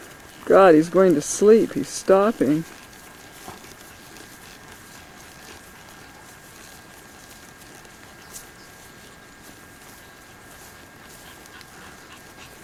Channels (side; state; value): both; identical; correlation 1.00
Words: God, he's going to sleep. He's stopping.